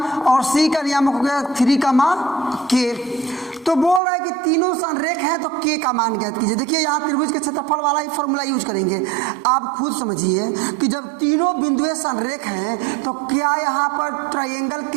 और सी का नियामक हो गया 3, k। तो बोल रहा है कि तीनों संरेख हैं तो के का मान ज्ञात कीजिए। देखिए यहाँ त्रिभुज के क्षेत्रफल वाला ही फॉर्मूला यूज करेंगे। आप खुद समझिए कि जब तीनों बिंदुएं संरेख हैं तो क्या यहाँ पर ट्रायंगल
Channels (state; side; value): drops out; left; at 4.0 s